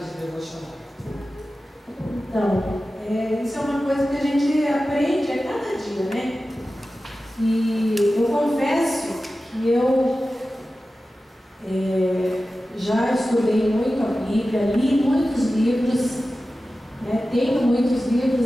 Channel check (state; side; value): normal; both; correlation 0.94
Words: devocional? Então, isso é uma coisa que a gente aprende a cada dia, né? E eu confesso que eu já estudei muito a Bíblia, li muitos livros, né? Tenho muitos